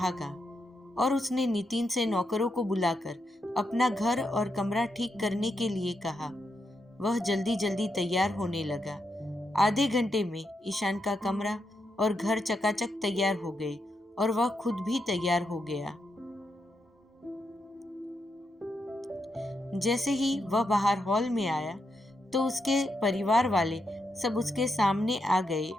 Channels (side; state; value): both; normal; correlation 0.83